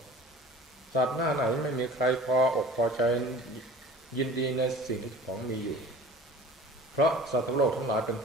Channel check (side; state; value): both; normal; correlation 0.43